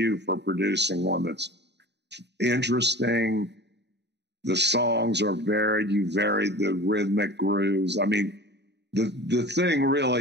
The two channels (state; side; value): late; left; 0.50 ms